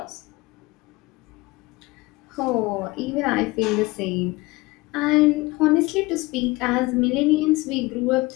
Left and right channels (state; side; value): quieter; right; 22.2 dB